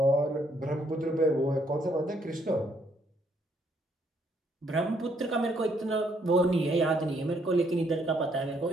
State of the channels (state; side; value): normal; both; correlation 0.70